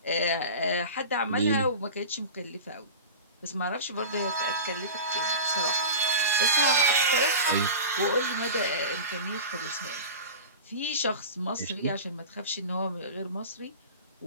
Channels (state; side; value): inverted; both; correlation -0.32